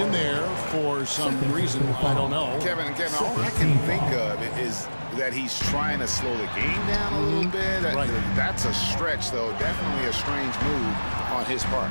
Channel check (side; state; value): both; inverted; correlation -1.00